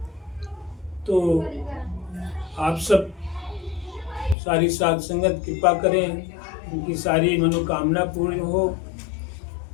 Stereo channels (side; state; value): right; drops out; at 4.4 s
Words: तो आप सब सारी साध संगत कृपा करें, उनकी सारी मनोकामना पूर्ण हो,